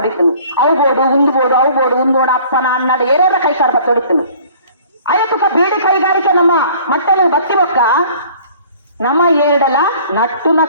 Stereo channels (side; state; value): both; inverted; correlation -0.51